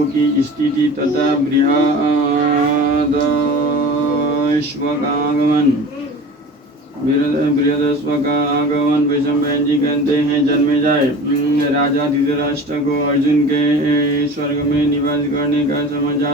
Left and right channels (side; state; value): both; normal; correlation 0.38